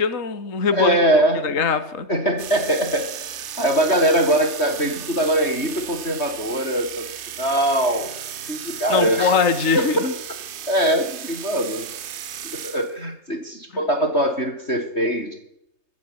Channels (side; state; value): right; late; 3.3 ms